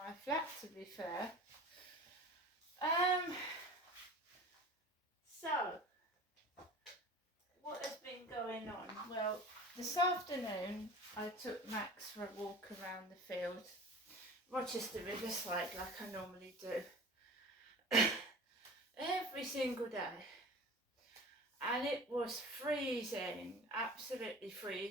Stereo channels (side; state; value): both; normal; correlation 0.38